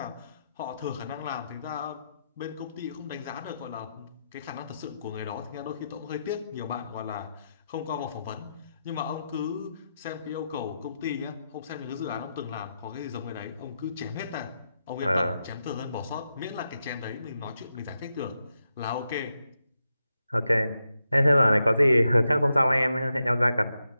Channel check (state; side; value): inverted; both; correlation -0.86